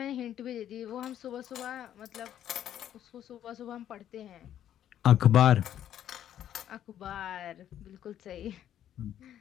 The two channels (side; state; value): right; quieter; 10.8 dB